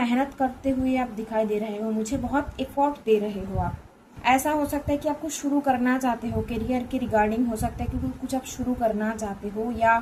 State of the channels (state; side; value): identical; both; correlation 1.00